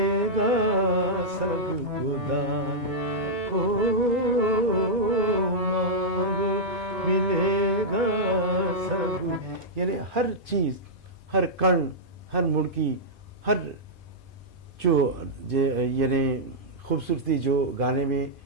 सबको दान, हो मांगो मिलेगा सब। यानी हर चीज, हर कण, हर मुड़की, हर जो यानी खूबसूरती जो गाने में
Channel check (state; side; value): normal; both; correlation -0.09